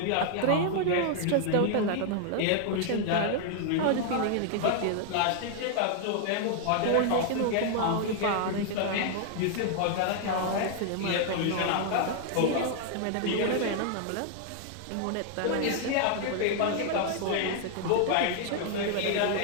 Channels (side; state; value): both; different; correlation 0.00